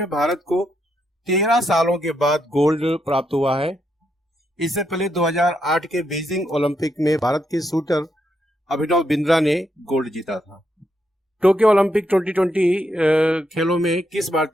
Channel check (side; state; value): both; normal; correlation 0.80